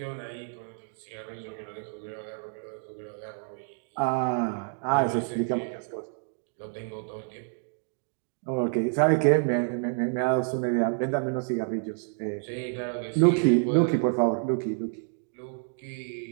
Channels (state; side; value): silent; left; 55 dB below the other